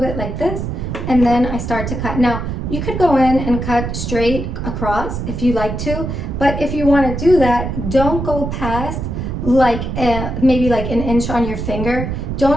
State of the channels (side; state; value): right; noise; rumble, 4 dB below the sound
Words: bit like this, and then I start to cut. Now, you could go in and cut straight across if you like to, but if you want to do that, don't go past like maybe like an inch on your finger.